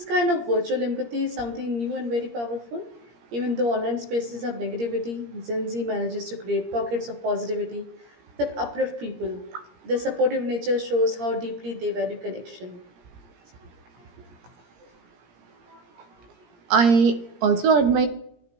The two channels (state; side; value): late; left; 17 ms